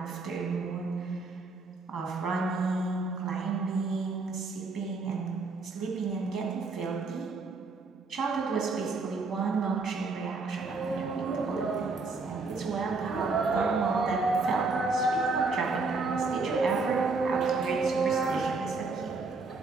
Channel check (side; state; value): left; quieter; 3.9 dB